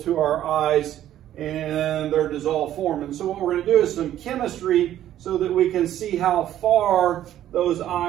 our eyes in their dissolved form. And so what we're going to do is some chemistry so that we can see how far those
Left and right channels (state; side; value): quieter; left; 12.1 dB